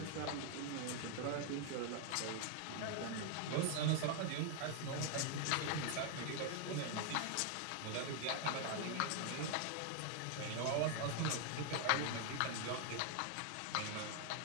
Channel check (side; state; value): both; different; correlation 0.00